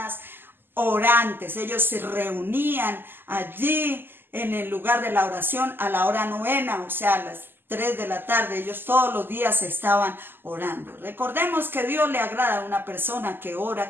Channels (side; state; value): left; late; 0.097 ms